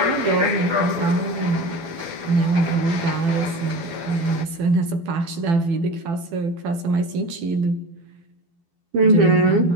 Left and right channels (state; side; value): late; left; 12 ms